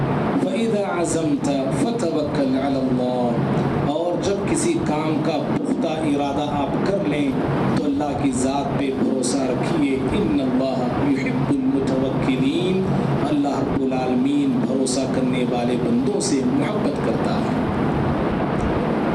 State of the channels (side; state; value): both; identical; correlation 1.00